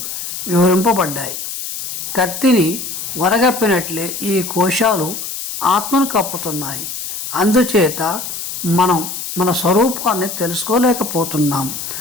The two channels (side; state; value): left; noise; hiss, 7 dB below the sound